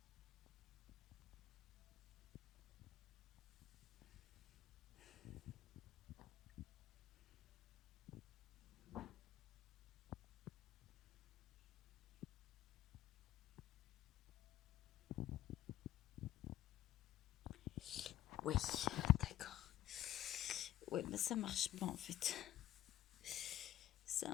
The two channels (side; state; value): right; quieter; 13.1 dB